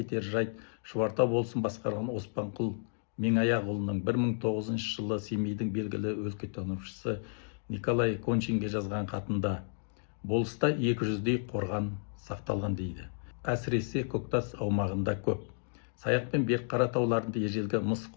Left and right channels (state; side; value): silent; right; digital silence